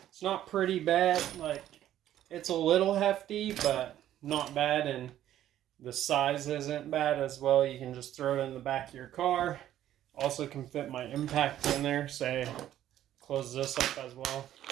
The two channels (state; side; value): quieter; left; 12.1 dB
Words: It's not pretty bad. Like, it's a little hefty, but not bad, and the size isn't bad as well. You can just throw it in the back of your car. Also can fit my impact in there. Say, close this up as well.